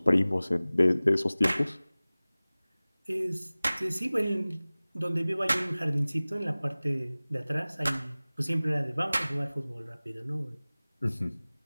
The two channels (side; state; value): both; inverted; correlation -0.99